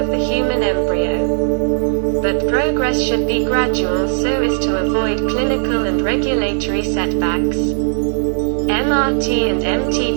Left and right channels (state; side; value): silent; left; 60 dB below the other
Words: the human embryo. But progress should be gradual so as to avoid clinical and regulatory setbacks. MRT and